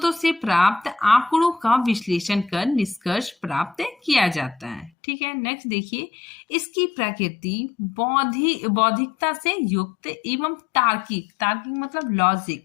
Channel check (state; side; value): drops out; right; at 4.9 s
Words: से प्राप्त आंकड़ों का विश्लेषण कर निष्कर्ष प्राप्त किया जाता है। ठीक है, नेक्स्ट देखिए इसकी प्रकृति बौद्धिकता से युक्त एवं तार्किक मतलब लॉजिक,